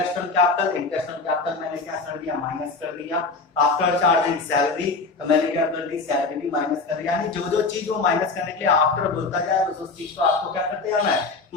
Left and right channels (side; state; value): right; quieter; 3.8 dB